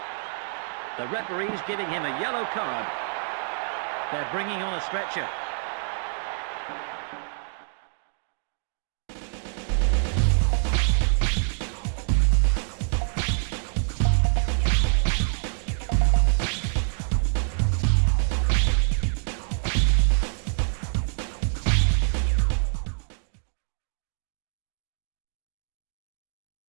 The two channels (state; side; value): silent; left; 61 dB below the other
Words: The referee's giving him a yellow card. They're bringing on a stretcher.